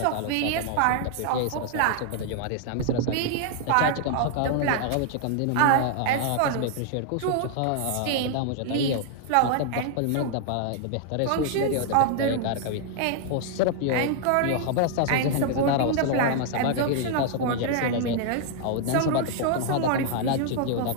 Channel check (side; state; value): both; different; correlation 0.00